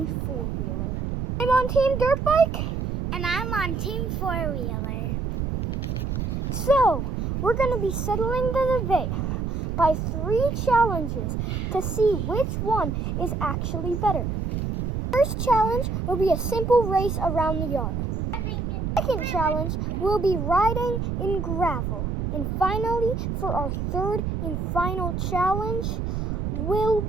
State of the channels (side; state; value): right; noise; rumble, 2 dB below the sound